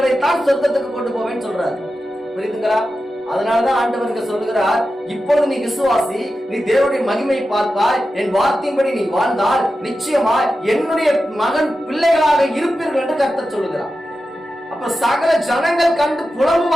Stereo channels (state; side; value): normal; both; correlation 0.91